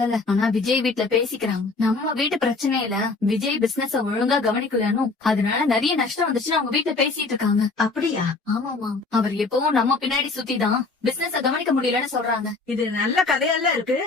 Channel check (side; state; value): right; quieter; 3.8 dB